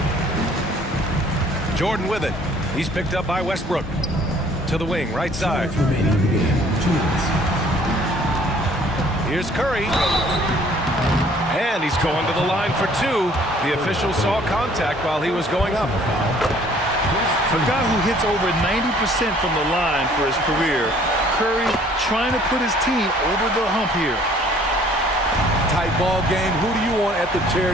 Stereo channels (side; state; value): both; normal; correlation 0.57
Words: Jordan with it. He's picked up by Westbrook. To the wing, right side. Here's Curry. And he's going to the line for 2. The official saw contact while he was going up. A guy who hits over 90% from the line for his career. Curry trying to put his team over the hump here. Tight ball game. Who do you want at the